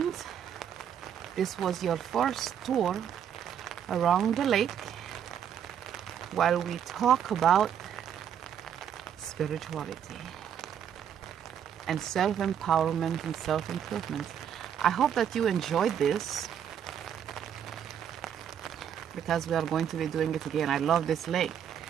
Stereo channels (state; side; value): quieter; left; 8.9 dB